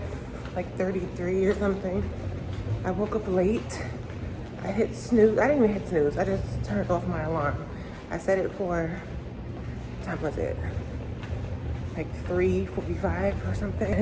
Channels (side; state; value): both; identical; correlation 1.00